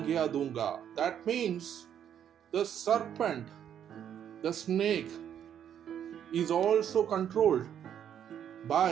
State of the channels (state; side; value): quieter; left; 9.4 dB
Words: दूंगा। That means the serpent, the snake is also controlled